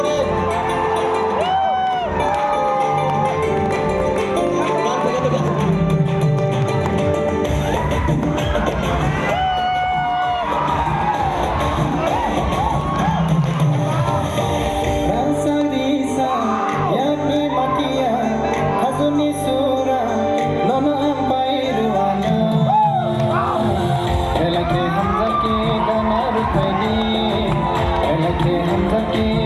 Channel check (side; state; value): both; identical; correlation 1.00